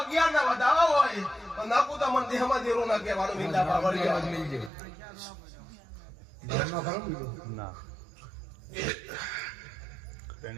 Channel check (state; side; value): drops out; left; at 4.7 s